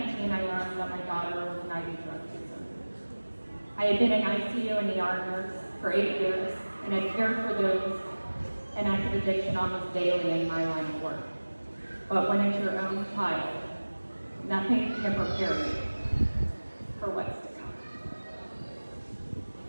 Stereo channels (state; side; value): inverted; both; correlation -1.00